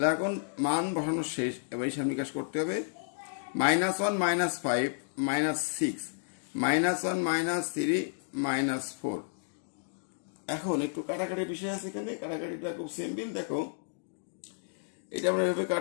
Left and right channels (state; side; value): silent; right; digital silence